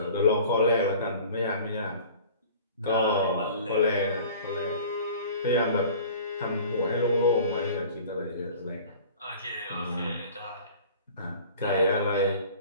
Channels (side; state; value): both; inverted; correlation -0.44